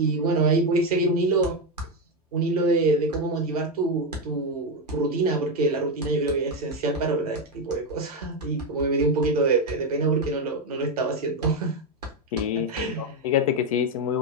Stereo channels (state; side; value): normal; both; correlation 0.08